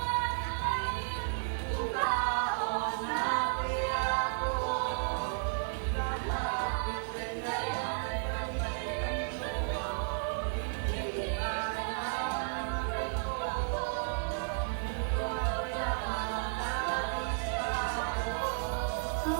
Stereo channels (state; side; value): silent; left; digital silence